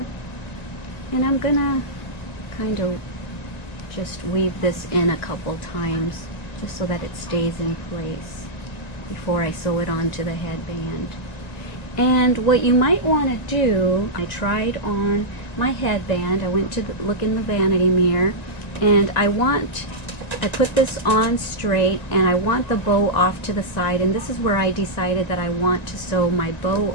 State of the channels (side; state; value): right; late; 1.9 ms